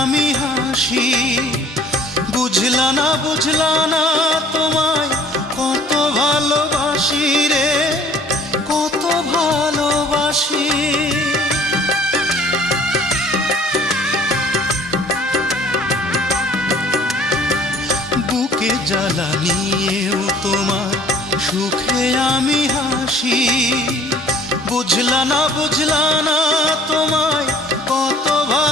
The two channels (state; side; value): normal; both; correlation 0.53